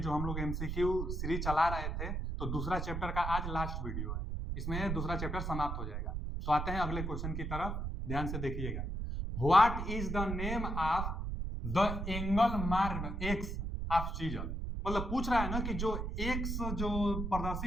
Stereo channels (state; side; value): noise; right; rumble, 3 dB below the sound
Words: हम लोग एमसीक्यू सीरीज चला रहे थे, तो दूसरा चैप्टर का आज लास्ट वीडियो है। इसमें दूसरा चैप्टर समाप्त हो जाएगा। तो आते हैं अगले क्वेश्चन की तरफ, ध्यान से देखिएगा। What is the name of the angle marked x of chisel? मतलब पूछ रहा है ना कि जो एक्स जो